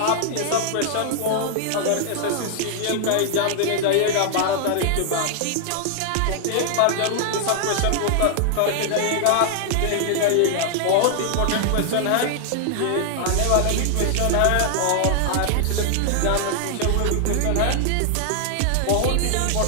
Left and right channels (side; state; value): both; different; correlation 0.00